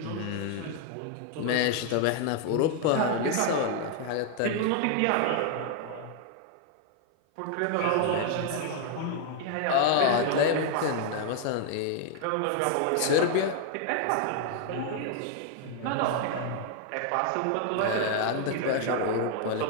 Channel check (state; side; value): different; both; correlation 0.00